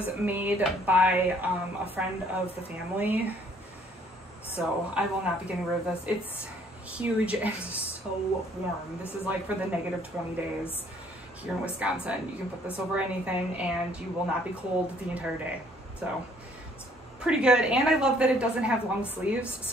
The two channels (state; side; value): normal; both; correlation 0.62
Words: made by a friend of the family. So I will not be getting rid of this. It's huge and so warm. This is like for the -20 days here in Wisconsin. You can put this over anything and you will not be cold the entire day. So it's pretty good. And I love that it doesn't have long sleeves.